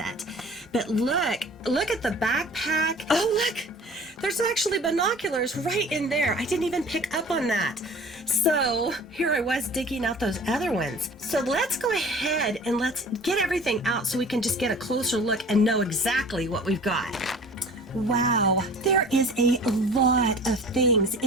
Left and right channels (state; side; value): normal; both; correlation 0.44